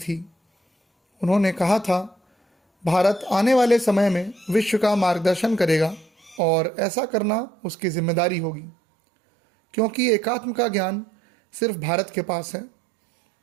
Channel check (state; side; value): drops out; left; at 6.4 s